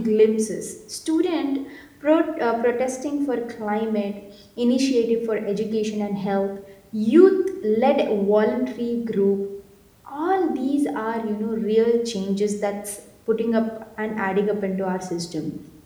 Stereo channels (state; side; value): identical; both; correlation 1.00